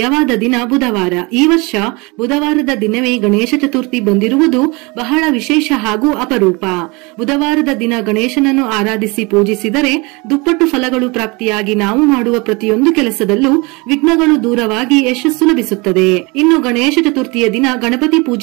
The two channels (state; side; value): quieter; left; 26.9 dB